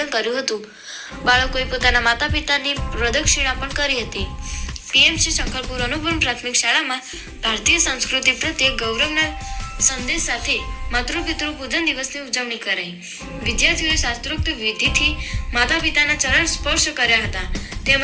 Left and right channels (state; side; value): identical; both; correlation 1.00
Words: કર્યું હતું। બાળકોએ પોતાના માતા પિતાની પ્રદક્ષિણા પણ કરી હતી। પીએમસી સંખલપુર અનુપમ પ્રાથમિક શાળામાં ભારતીય સંસ્કૃતિ પ્રત્યે ગૌરવના સંદેશ સાથે માતૃપિતૃ પૂજન દિવસની ઉજવણી કરાઈ। વિદ્યાર્થીઓએ શાસ્ત્રોક્ત વિધિથી માતા પિતાના ચરણ સ્પર્શ કર્યા હતા,